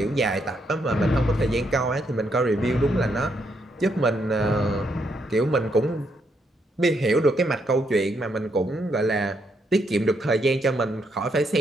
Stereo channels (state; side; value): normal; both; correlation 0.76